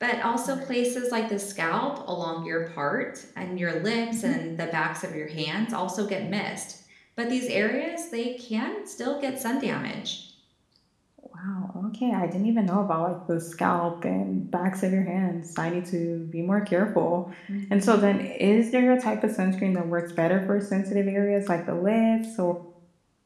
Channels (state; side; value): identical; both; correlation 1.00